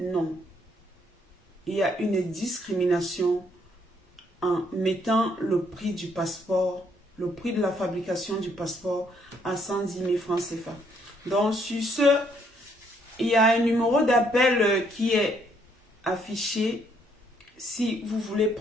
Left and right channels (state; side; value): normal; both; correlation 0.69